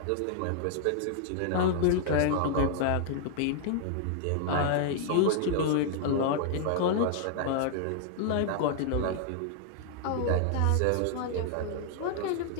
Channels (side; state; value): both; different; correlation 0.00